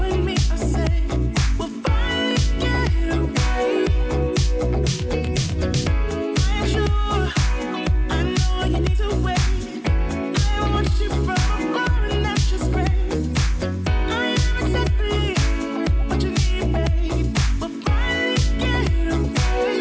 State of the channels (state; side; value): identical; both; correlation 1.00